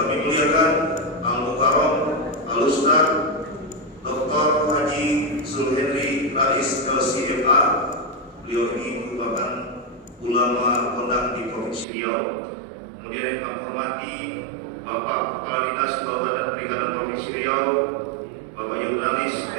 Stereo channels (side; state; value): left; drops out; at 11.9 s